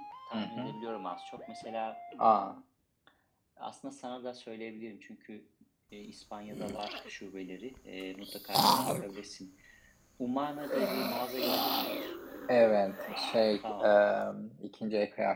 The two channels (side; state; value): both; identical; correlation 1.00